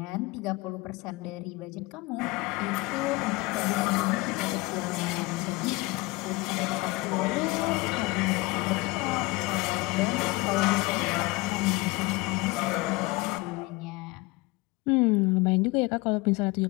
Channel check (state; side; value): quieter; right; 22.8 dB